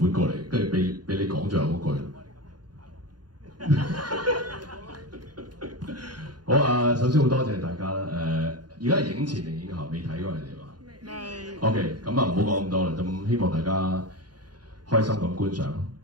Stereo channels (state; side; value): late; left; 0.70 ms